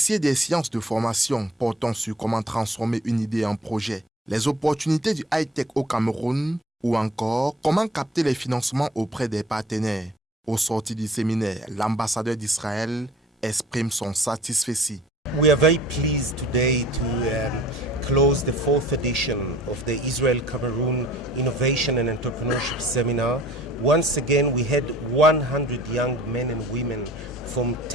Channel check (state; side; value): normal; both; correlation 0.51